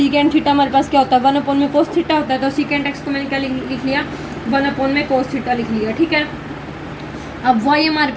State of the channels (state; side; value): identical; both; correlation 1.00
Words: थीटा हमारे पास क्या होता है, 1 में कोस थीटा होता है, तो सीकेंट एक्स को मैंने क्या लिख लिया, 1 में कोस थीटा लिख लिया, ठीक है। अब वाई हमारे